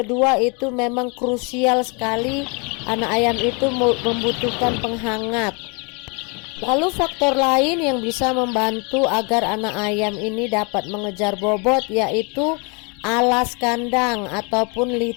itu memang krusial sekali, anak ayam itu membutuhkan penghangat. Lalu faktor lain yang bisa membantu agar anak ayam ini dapat mengejar bobot yaitu alas kandang ataupun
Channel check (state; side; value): quieter; right; 32.4 dB